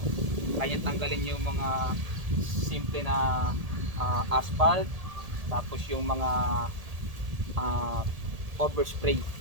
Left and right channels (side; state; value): left; late; 1.8 ms